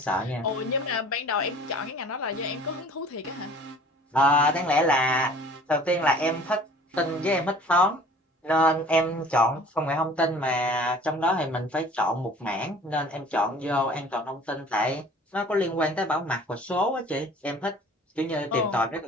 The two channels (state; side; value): normal; both; correlation 0.48